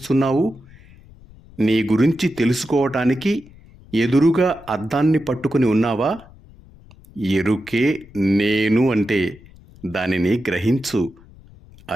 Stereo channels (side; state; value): left; noise; rumble, 23 dB below the sound